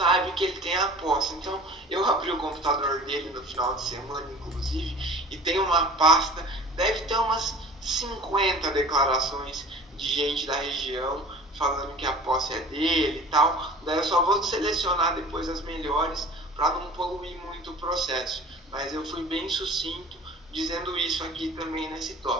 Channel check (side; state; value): both; normal; correlation 0.42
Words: que ele tem a posse. Então, eu abri o computador dele no final de semana, inclusive, e tem uma pasta, deve ter umas 50 declarações de gente da região falando que a posse é dele e tal. Daí eu só vou selecionar depois as melhores para não poluir muito o processo. Mas eu fui bem sucinto dizendo isso aqui também nesse